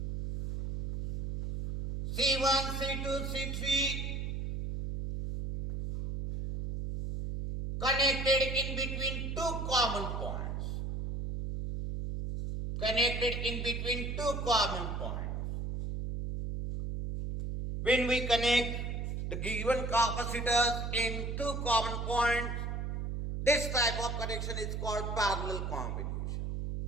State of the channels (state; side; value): noise; right; hum, 3 dB below the sound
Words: C1, C2, C3 connected in between two common points. Connected in between two common points. When we connect the given capacitors in two common points, this type of connection is called parallel combination.